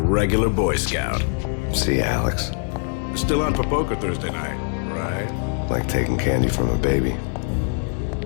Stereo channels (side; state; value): right; silent; 55 dB below the other